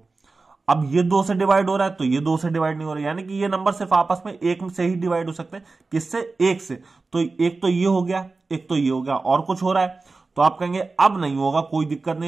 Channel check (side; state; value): left; quieter; 3.8 dB